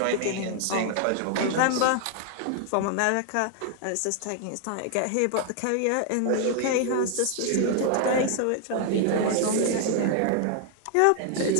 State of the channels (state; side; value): different; both; correlation 0.00